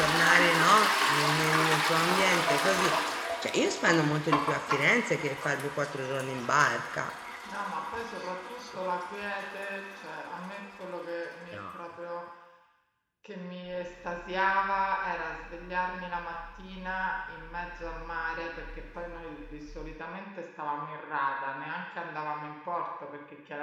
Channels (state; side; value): identical; both; correlation 1.00